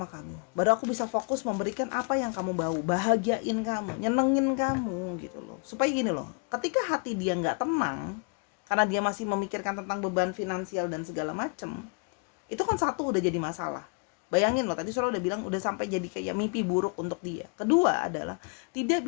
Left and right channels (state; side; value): quieter; right; 34.5 dB